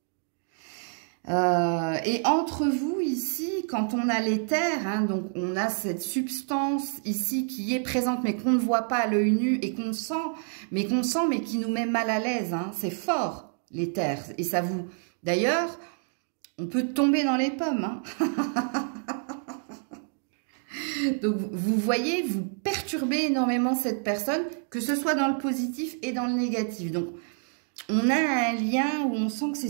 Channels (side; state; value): left; silent; 56 dB below the other